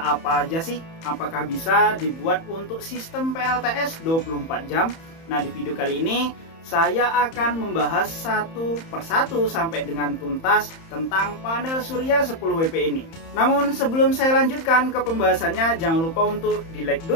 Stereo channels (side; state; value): right; late; 31 ms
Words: aja sih? Apakah bisa dibuat untuk sistem PLTS 24 jam? Nah, di video kali ini saya akan membahas satu persatu sampai dengan tuntas tentang panel surya 10 WP ini. Namun sebelum saya lanjutkan ke pembahasannya, jangan lupa untuk di like